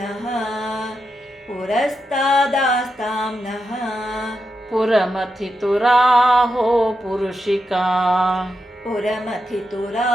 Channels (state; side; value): normal; both; correlation 0.86